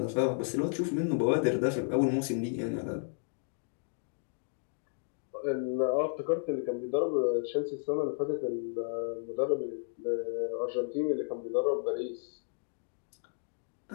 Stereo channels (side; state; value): right; silent; 56 dB below the other